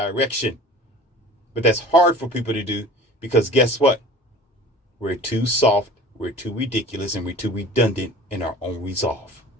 But that's hard for people to do, because guess what? We're too soft, we're too ridiculous, and we're too redundant in our own resolve.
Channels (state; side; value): normal; both; correlation 0.42